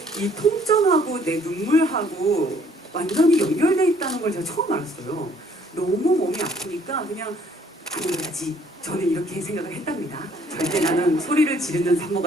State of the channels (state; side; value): normal; both; correlation 0.61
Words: 이 통증하고 내 눈물하고 완전히 연결돼 있다는 걸 제가 처음 알았어요. 너무 몸이 아프니까 그냥 안 그래야지. 저는 이렇게 생각을 했답니다. 절대 나는 소리를 지르는